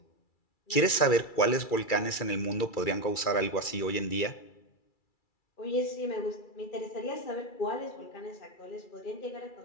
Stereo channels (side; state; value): right; late; 2.3 ms